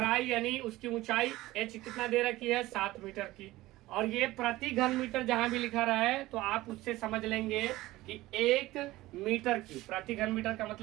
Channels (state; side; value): quieter; left; 17.7 dB